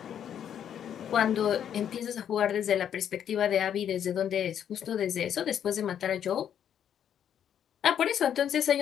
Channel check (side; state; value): right; quieter; 9.3 dB